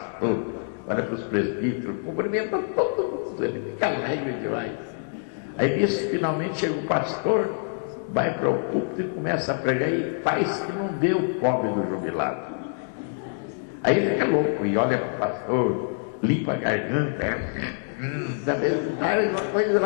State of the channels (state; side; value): silent; right; digital silence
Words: olha para os presbíteros, cumprimenta todo mundo, ele fica alegre demais. Aí nisso, finalmente chega o pastor, vai para o púlpito e começa a pregar e faz que não dê o pobre do jubilado. Aí ele fica louco e olha para o pastor, limpa a garganta, da mesma uma coisa